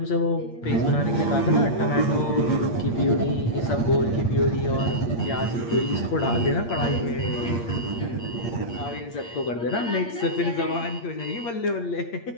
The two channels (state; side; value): late; right; 8.6 ms